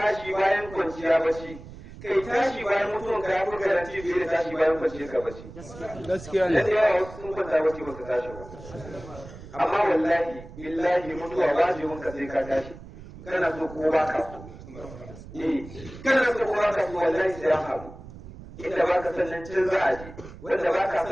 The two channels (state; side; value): noise; right; rumble, 15 dB below the sound